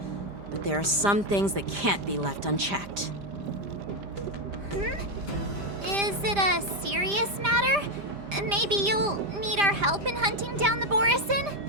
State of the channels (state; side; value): late; left; 5.0 ms